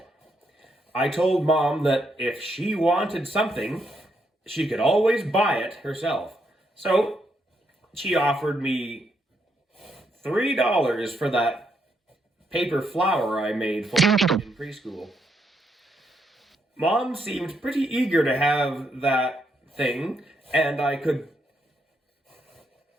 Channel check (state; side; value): normal; both; correlation 0.77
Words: I told Mom that if she wanted something, she could always buy it herself. So she offered me $3 for that paper flower I made for her in preschool. Mom seemed pretty eager to have that thing, and I could